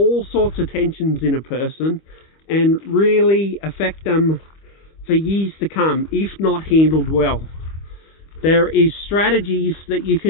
sorts of tensions in a person and really affect them for years to come if not handled well. There is strategies that you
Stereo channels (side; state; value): right; late; 25 ms